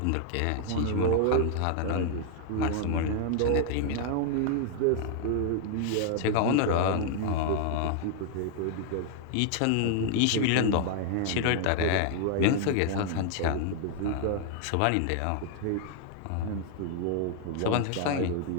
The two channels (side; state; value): both; different; correlation 0.00